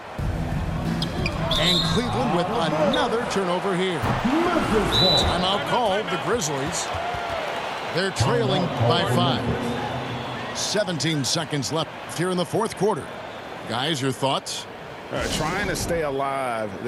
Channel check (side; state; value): both; identical; correlation 1.00